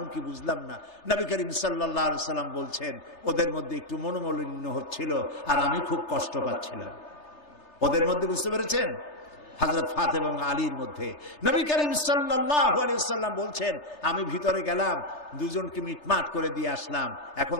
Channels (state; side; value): late; right; 3.3 ms